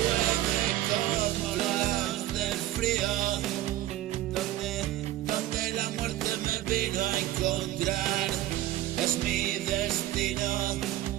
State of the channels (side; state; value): left; quieter; 14.5 dB